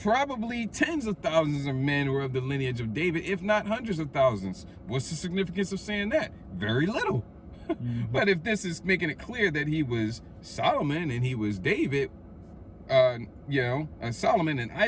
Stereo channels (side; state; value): both; identical; correlation 1.00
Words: Probably tens of thousands of men were of the lineage of David, if not hundreds of thousands. What's the significance of saying that? Very little. But if this is making it clear that he was Solomon and he was David, Solomon and